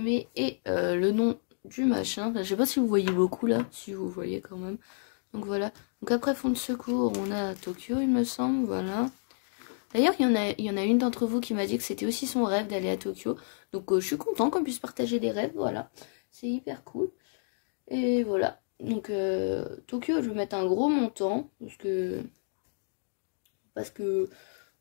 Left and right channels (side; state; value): right; silent; digital silence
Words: et le nom du machin. Enfin, je sais pas si vous voyez beaucoup là, si vous voyez quand même. Donc voilà. Donc après fonds de secours on a Tokyo il me semble, voilà. D'ailleurs, il y en a une d'entre vous qui m'a dit que c'était aussi son rêve d'aller à Tokyo. Donc, je suis contente qu'on puisse partager des rêves, voilà. C'est hyper cool. Et voilà. Donc, Tokyo, je vais mettre un gros montant. Parce que